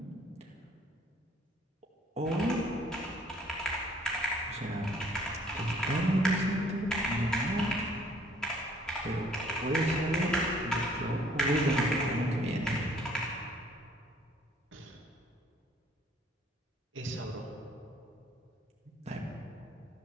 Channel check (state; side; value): normal; both; correlation 0.59